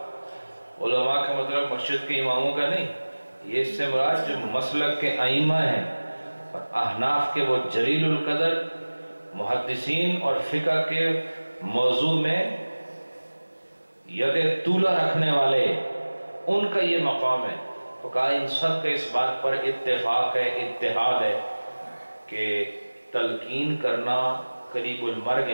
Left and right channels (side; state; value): both; inverted; correlation -1.00